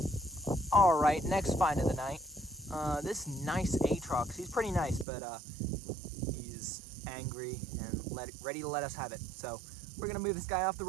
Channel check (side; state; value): left; drops out; at 5.1 s